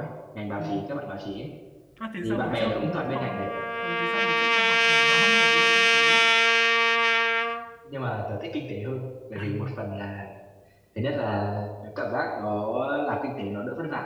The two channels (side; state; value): both; identical; correlation 1.00